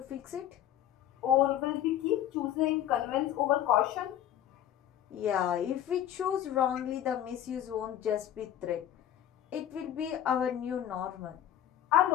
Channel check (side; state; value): right; quieter; 11.0 dB